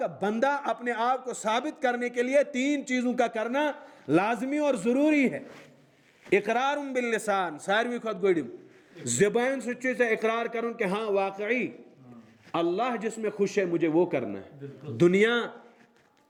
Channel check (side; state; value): both; identical; correlation 1.00